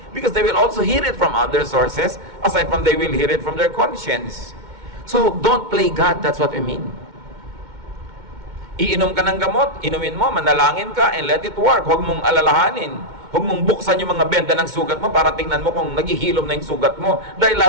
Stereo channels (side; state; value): left; late; 2.1 ms